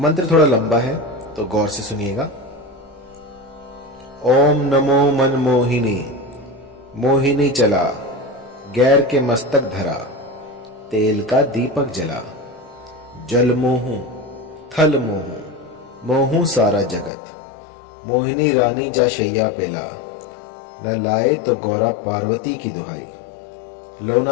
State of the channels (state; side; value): drops out; right; at 17.1 s